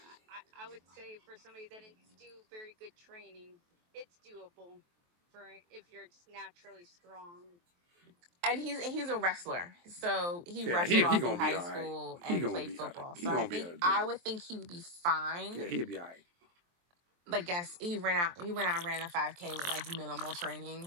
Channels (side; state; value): left; late; 23 ms